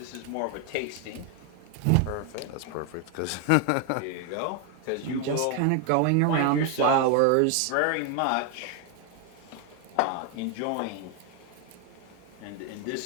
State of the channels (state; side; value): different; both; correlation 0.01